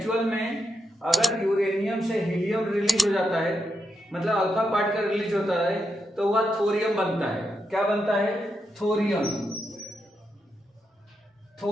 में अगर यूरेनियम से हीलियम रिलीज हो जाता है, मतलब अल्फा पार्टिकल रिलीज होता है, तो वह थोरियम बनता है। क्या बनता है, थोरियम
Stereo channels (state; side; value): normal; both; correlation 0.84